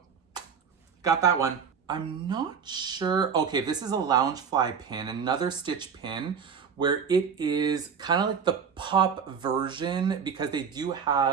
got that one. I'm not sure. Okay, this is a Loungefly pin, another Stitch pin, where it is kind of like the pop version, because they do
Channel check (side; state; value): left; quieter; 6.6 dB